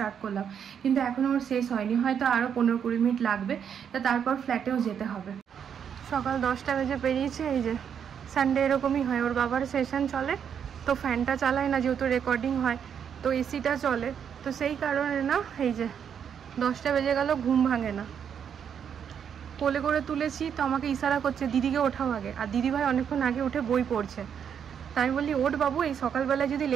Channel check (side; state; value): left; quieter; 8.0 dB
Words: করলাম, কিন্তু এখনও ওর শেষ হয়নি, হয়তো আরও 15-20 মিনিট লাগবে। তা তারপর ফ্ল্যাটেও যেতে হবে। সকাল 10টা বেজে পেরিয়েছে। এই যে সানডে এরকমই হয়, ওর বাবার সেশন চলে, তো ফ্যানটা চালায় না, যেহেতু রেকর্ডিং হয়, তো এসিটা চলে। তো সেই কারণে না, এই যে 10টা বেজে গেল, ঘুম ভাঙে না। কোলে করে তুলেছি, তো আমাকে ইশারা করছে দিদিকে ওঠাও আগে, আর দিদিভাই অনেকক্ষণ আগে উঠে বই পড়ছে। তাই আমি বলি ওঠ বাবু, এই সকালবেলায় যদি